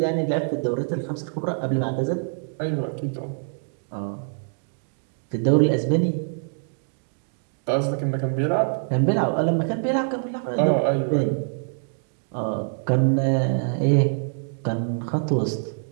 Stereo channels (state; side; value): silent; left; digital silence